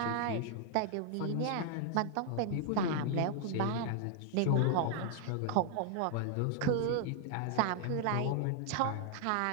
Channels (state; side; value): different; both; correlation 0.00